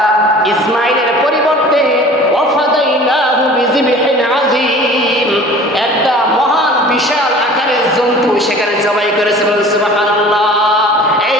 ইসমাইলের পরিবর্তে ওয়াফাদাইনাহু বিযিবহিন আযীম, একটা মহান বিশাল আকারের জন্তু সেখানে জবাই করেছে। সুবহানাল্লাহ। এই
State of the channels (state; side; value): normal; both; correlation 0.45